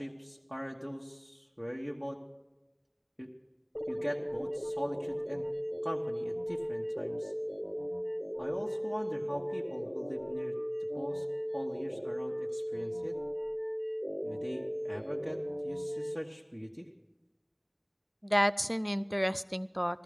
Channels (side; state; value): both; identical; correlation 1.00